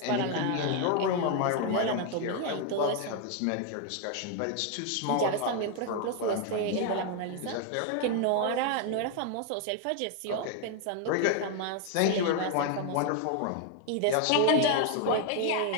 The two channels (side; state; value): both; different; correlation 0.01